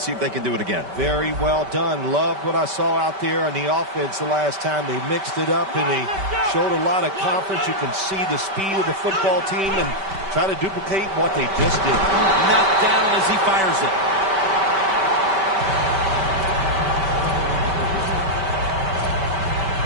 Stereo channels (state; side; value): late; left; 5.2 ms